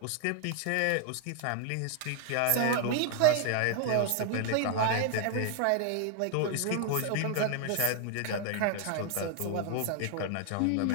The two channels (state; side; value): different; both; correlation 0.00